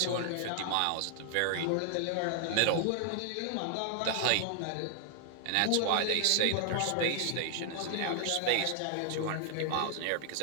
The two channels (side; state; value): both; different; correlation 0.00